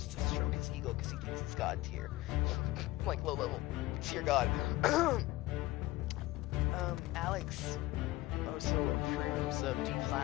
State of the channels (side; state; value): right; quieter; 18.0 dB